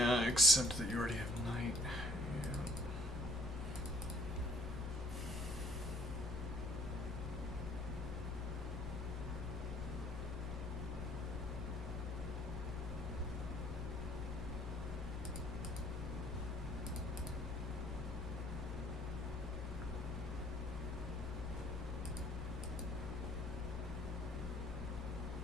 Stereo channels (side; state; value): both; normal; correlation 0.60